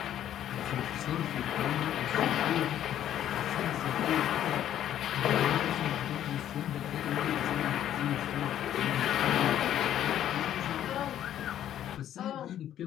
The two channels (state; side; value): quieter; right; 11.2 dB